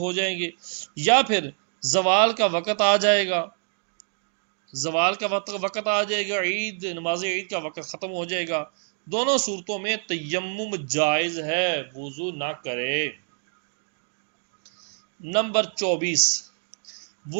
جائیں گے، یا پھر زوال کا وقت آ جائے گا، عید نماز عید کا وقت ختم ہو جائے گا، دونوں صورتوں میں تیمم جائز ہے، وضو نہ کرے۔ نمبر 24،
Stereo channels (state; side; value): silent; left; digital silence